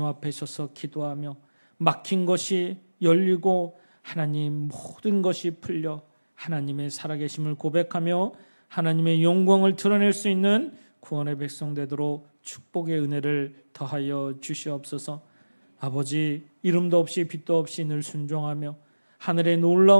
앞에 서서 기도하며 막힌 것이 열리고 하나님 모든 것이 풀려 하나님의 살아계심을 고백하며 하나님의 영광을 드러낼 수 있는 구원의 백성 되도록 축복의 은혜를 더하여 주시옵소서. 아버지 이름도 없이 빛도 없이 늘 순종하며 하늘의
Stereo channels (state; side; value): inverted; both; correlation -1.00